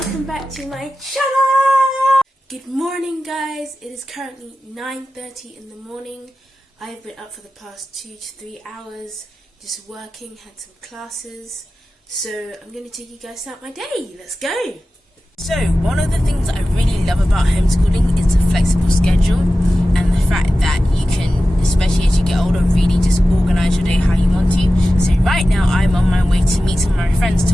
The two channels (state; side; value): normal; both; correlation 0.94